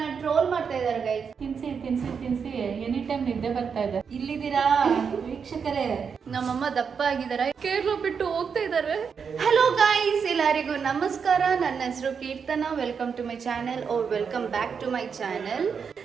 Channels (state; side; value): quieter; left; 6.3 dB